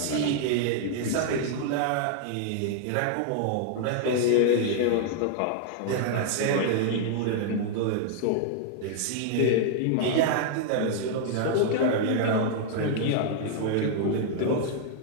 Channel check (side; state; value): both; different; correlation -0.01